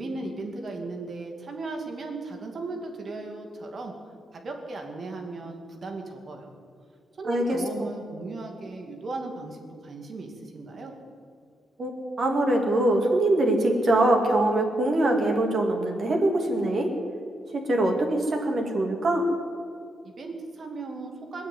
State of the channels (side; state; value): both; normal; correlation 0.80